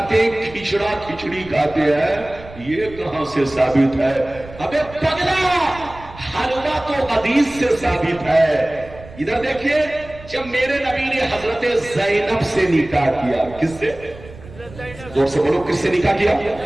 ہیں، کھچڑا کھچڑی کھاتے ہیں، یہ کہاں سے ثابت ہے؟ ابے پگلا حلوہ تو حدیث سے ثابت ہے. ادھر دیکھیے جب میرے نبی نے حضرت زینب سے نکاح کیا. کس سے؟ زور سے بولو, کس سے نکاح کیا؟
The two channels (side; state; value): right; noise; rumble, 18 dB below the sound